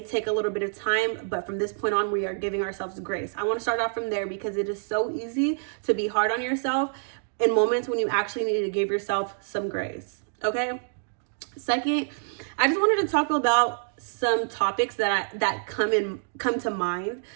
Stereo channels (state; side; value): silent; left; digital silence